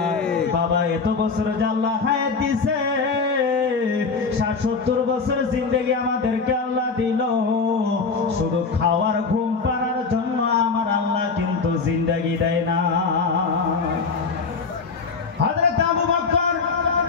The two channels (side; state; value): right; quieter; 4.7 dB